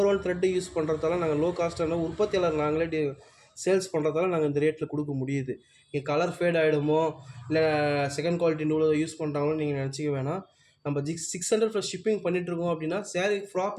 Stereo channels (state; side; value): identical; both; correlation 1.00